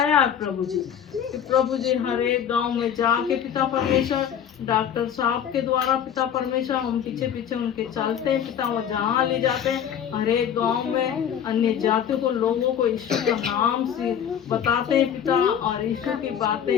है प्रभु जी। कि प्रभु जी हर एक गांव में जाके पिता परमेश्वर डॉक्टर साहब के द्वारा पिता परमेश्वर हम पीछे पीछे उनके चलते हैं पिता, वो जहाँ ले जाते हैं हर एक गांव में अन्य जातियों को लोगों को यीशु का नाम से बताते हैं पिता, और यीशु की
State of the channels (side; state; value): right; quieter; 8.9 dB